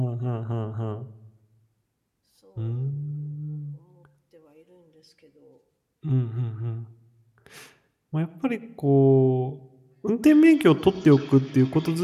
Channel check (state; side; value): identical; both; correlation 1.00